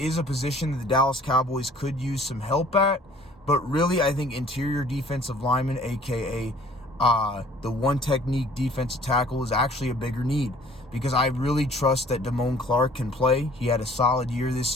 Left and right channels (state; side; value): normal; both; correlation 0.54